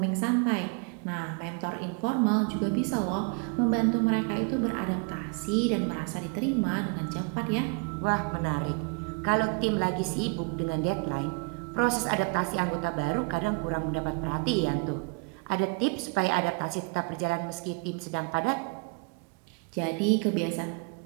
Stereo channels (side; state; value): left; quieter; 33.9 dB